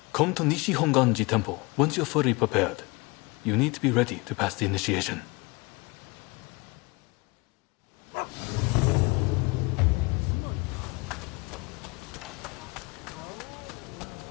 Come to Nishi Honganji Temple once you're fully prepared. You need to be ready to pass the initiation.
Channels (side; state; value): right; quieter; 26.1 dB